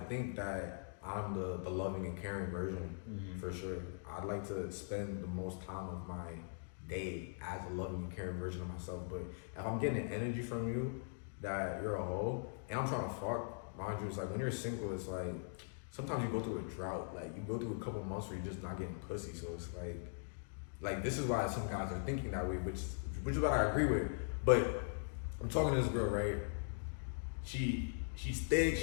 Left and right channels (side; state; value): right; silent; digital silence